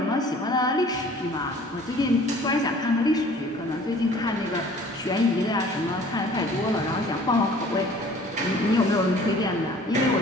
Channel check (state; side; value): normal; both; correlation 0.51